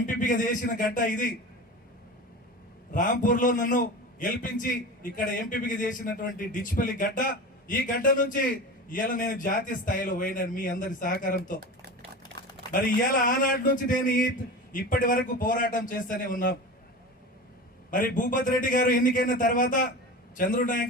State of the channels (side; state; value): both; normal; correlation 0.31